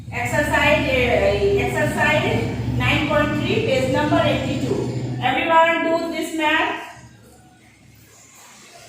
Exercise 9.3, page number 82. Everyone do this math.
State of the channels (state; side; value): identical; both; correlation 1.00